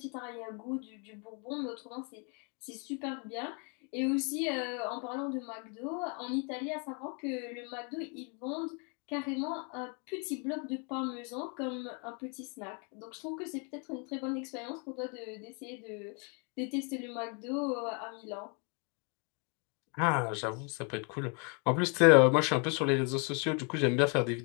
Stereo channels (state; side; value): quieter; right; 36.5 dB